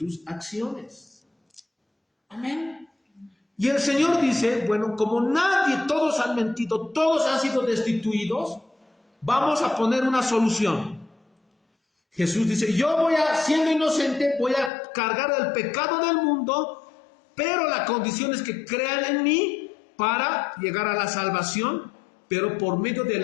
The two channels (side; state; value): right; drops out; at 14.7 s